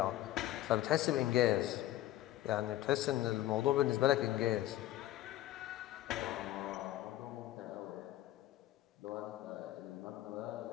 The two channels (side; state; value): right; quieter; 14.6 dB